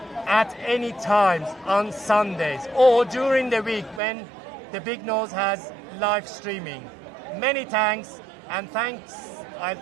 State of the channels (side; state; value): left; drops out; at 4.0 s